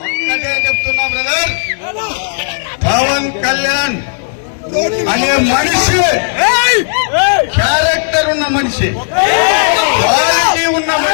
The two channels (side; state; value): right; silent; digital silence